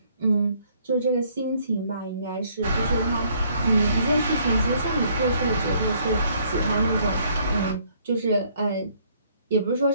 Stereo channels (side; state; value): both; inverted; correlation -0.65